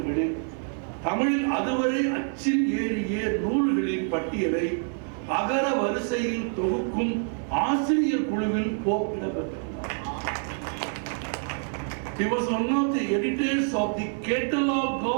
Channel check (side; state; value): left; silent; 56 dB below the other